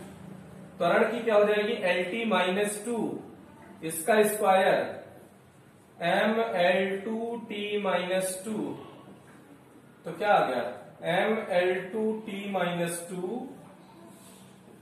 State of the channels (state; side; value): identical; both; correlation 1.00